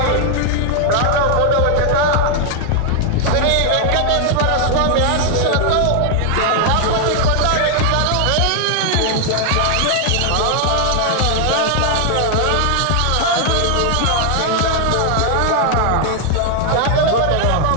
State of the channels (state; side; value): different; both; correlation 0.00